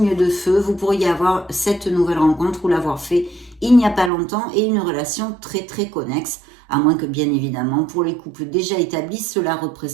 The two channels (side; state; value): left; drops out; at 4.1 s